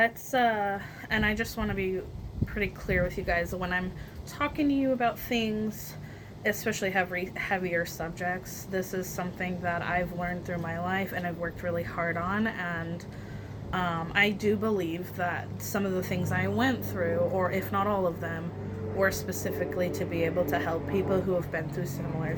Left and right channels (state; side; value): identical; both; correlation 1.00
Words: and I just want to be pretty clear with you guys when I'm talking to you about things, especially heavier subjects. This is something that I've learned through my life and I've worked really hard on, and I do believe that some of the things I went through, or if not all of them, were specifically to be able to help people who have been through similar